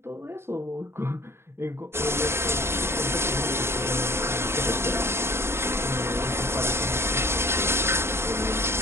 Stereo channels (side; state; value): left; late; 0.12 ms